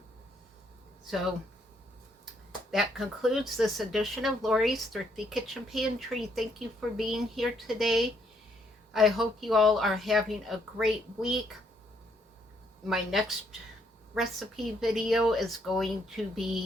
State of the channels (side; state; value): both; normal; correlation 0.71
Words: So that concludes this edition of Lori's Thrifty Kitchen Pantry. Thank you for being here today. I hope you all are having a great week. My next recipe video is going to